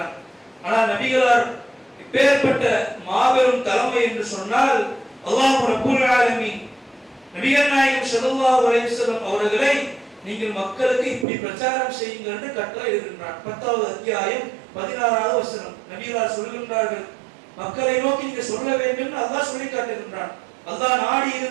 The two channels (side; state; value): left; drops out; at 11.2 s